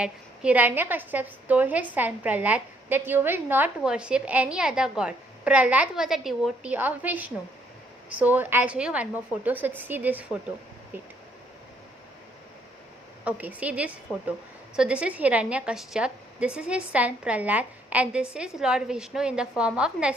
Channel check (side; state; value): both; normal; correlation 0.68